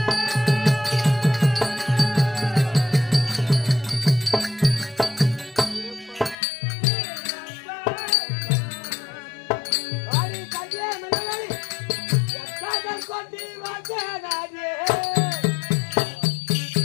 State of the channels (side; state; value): right; drops out; at 6.4 s